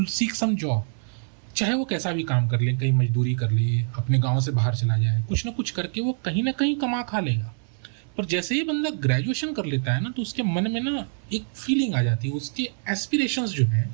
seek some job. चाहे वो कैसा भी काम कर ले, कहीं मजदूरी कर ले, अपने गांव से बाहर चला जाए, कुछ ना कुछ करके वो कहीं ना कहीं कमा खा लेगा। पर जैसे ही बंदा ग्रेजुएशन कर लेता है ना, तो उसके मन में ना एक फीलिंग आ जाती है, उसके एस्पिरेशंस जो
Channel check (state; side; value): silent; left; 59 dB below the other